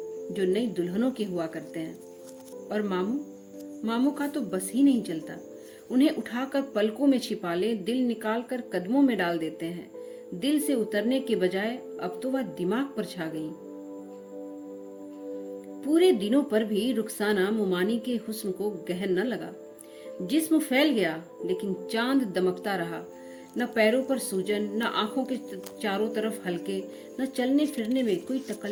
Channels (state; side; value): identical; both; correlation 1.00